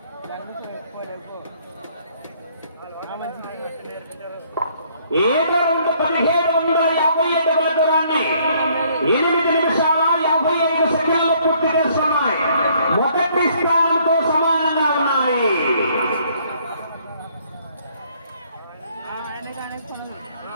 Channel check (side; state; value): both; inverted; correlation -0.64